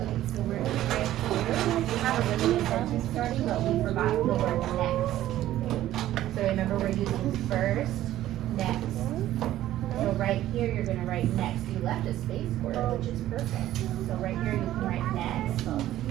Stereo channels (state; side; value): quieter; left; 13.6 dB